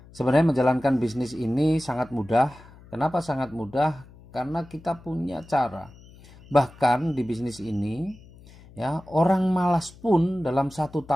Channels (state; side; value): noise; left; hum, 22 dB below the sound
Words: Sebenarnya menjalankan bisnis ini sangat mudah. Kenapa sangat mudah? Karena kita punya cara. Bahkan di bisnis ini, ya, orang malas pun dalam 1